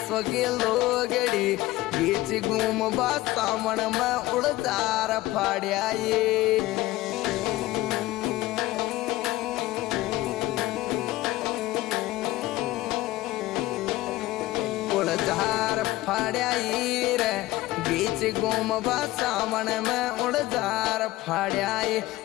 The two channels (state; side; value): quieter; right; 17.7 dB